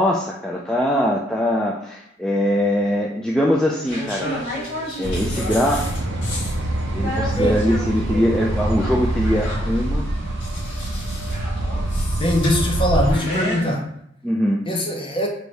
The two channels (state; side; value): normal; both; correlation 0.74